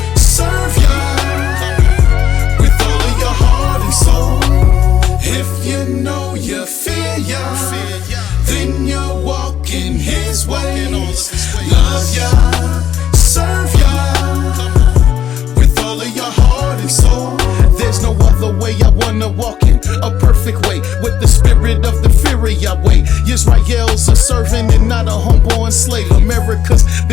serve Yah. With all of your heart and soul, if you know you fear Yah, then you're walking His ways. Love Yah, serve Yah. With all of your heart and soul. There's no other way I wanna walk in a perfect way with the spirit of the fear of Yahweh. Israel's a servant and not a homeborn slave. America's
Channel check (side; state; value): right; quieter; 9.9 dB